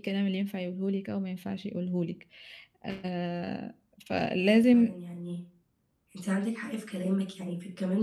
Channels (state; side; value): identical; both; correlation 1.00